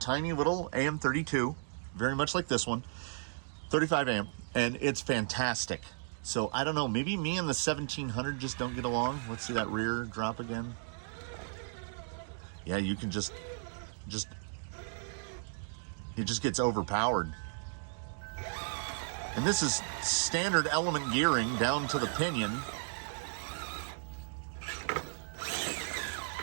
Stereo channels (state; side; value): silent; left; digital silence